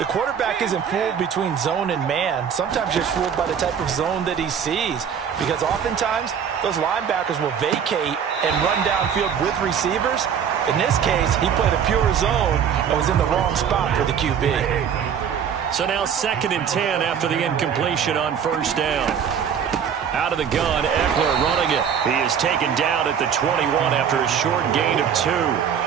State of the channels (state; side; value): quieter; left; 7.8 dB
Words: quarterback isn't fooled between zone and man. Sometimes just fooled by the type of zone that he sees. Because oftentimes, those linebackers will vacate and run downfield with receivers. In this case, he played a pure zone and was in the wrong spot for the QB. So now 2nd and 10 after the incompletion on first down. Out of the gun, Eckler running it. He is taken down at the 21 after a short gain of 2.